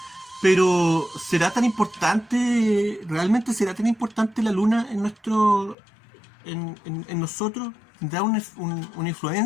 Pero ¿será tan importante, realmente será tan importante la luna en nosotros? ¿Tendrá una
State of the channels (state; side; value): drops out; right; at 5.8 s